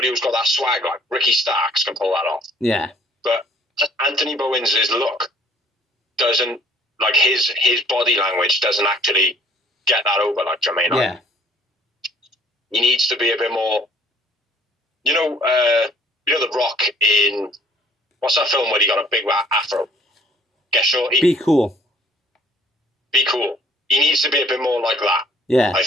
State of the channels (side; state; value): both; normal; correlation 0.56